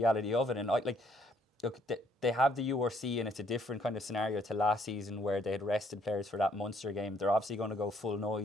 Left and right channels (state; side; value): normal; both; correlation 0.67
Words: of it. And look, they have the URC, and it's a different kind of scenario to last season where they had rested players for that Munster game. They're obviously going to go full